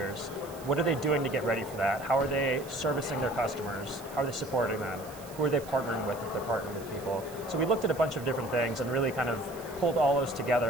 What are they doing to get ready for that? How are they servicing their customers? How are they supporting them? Who are they partnering with if they're partnering with people? So we looked at a bunch of different things and really kind of pulled all those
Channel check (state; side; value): noise; right; hiss, 19 dB below the sound